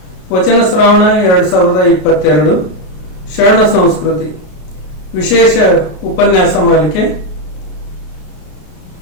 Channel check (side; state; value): right; late; 33 ms